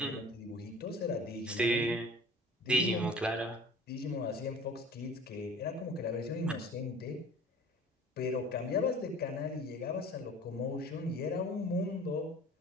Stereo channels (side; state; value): both; normal; correlation 0.44